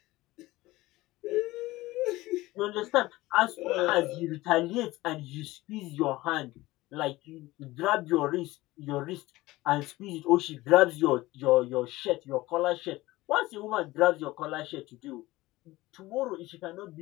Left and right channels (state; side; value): quieter; right; 18.7 dB